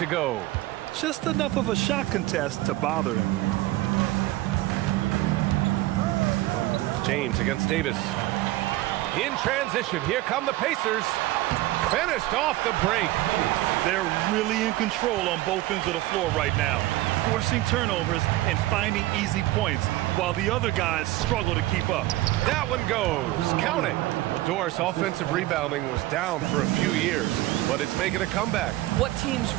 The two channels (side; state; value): left; quieter; 17.2 dB